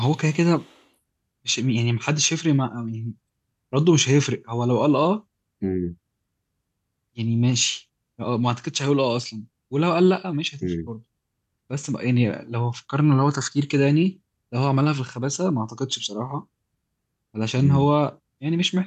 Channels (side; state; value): both; identical; correlation 1.00